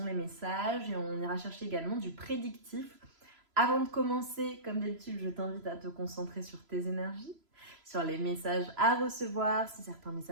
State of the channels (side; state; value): left; late; 3.0 ms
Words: les messages et on ira chercher également du prédictif. Avant de commencer, comme d'habitude, je t'invite à te concentrer sur tes énergies, sur les messages à recevoir. Si certains